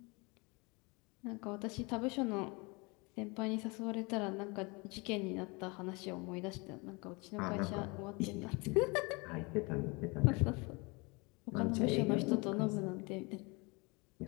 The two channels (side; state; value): right; quieter; 28.1 dB